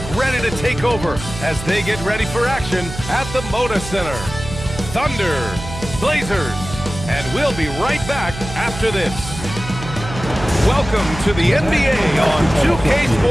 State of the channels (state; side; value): noise; right; hum, 10 dB below the sound